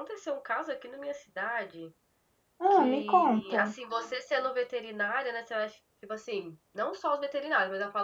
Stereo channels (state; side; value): identical; both; correlation 1.00